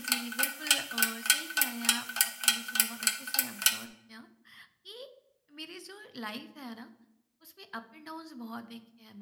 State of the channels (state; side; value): identical; both; correlation 1.00